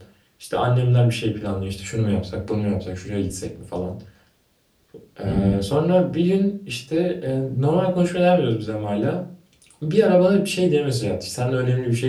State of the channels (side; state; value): both; identical; correlation 1.00